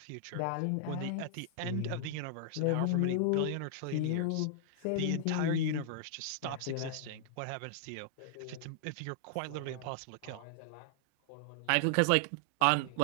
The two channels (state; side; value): different; both; correlation -0.01